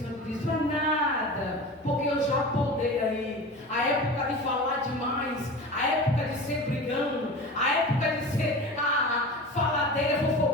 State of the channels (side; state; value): both; normal; correlation 0.33